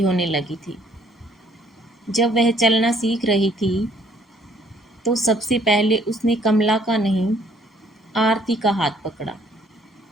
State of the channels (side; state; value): both; normal; correlation 0.63